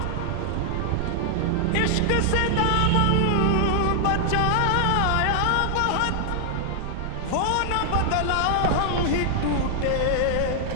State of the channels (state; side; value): different; both; correlation 0.00